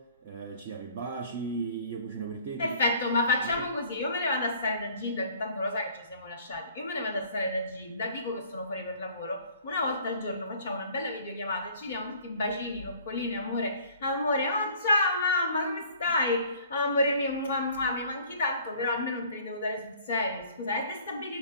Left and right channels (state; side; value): inverted; both; correlation -0.53